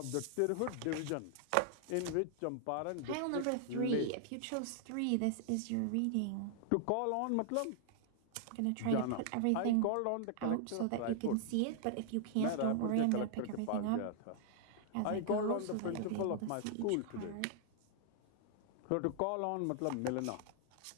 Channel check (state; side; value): different; both; correlation 0.00